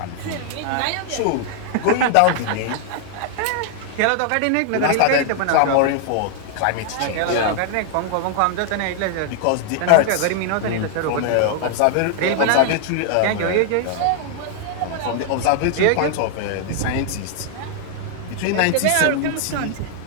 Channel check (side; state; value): both; different; correlation 0.00